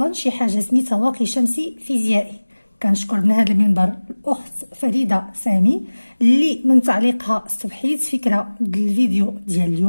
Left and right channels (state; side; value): inverted; both; correlation -1.00